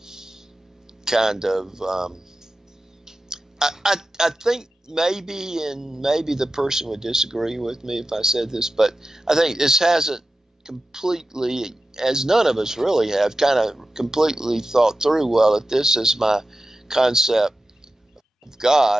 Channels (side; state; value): both; normal; correlation 0.93